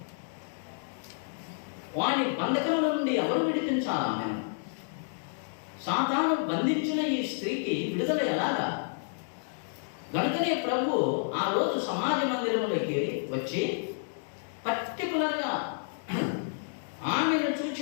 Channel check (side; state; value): right; silent; digital silence